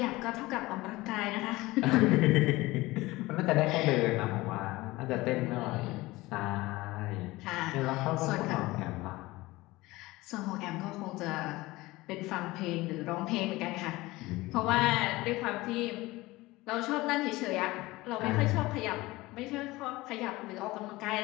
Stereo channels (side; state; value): right; quieter; 19.9 dB